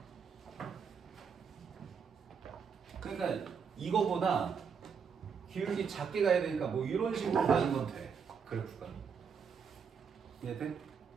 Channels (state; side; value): quieter; left; 6.3 dB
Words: 그러니까 이거보다 기울기 작게 가야 되니까 뭐 이런 식으로 가는 건 돼. 그래프가. 이해돼?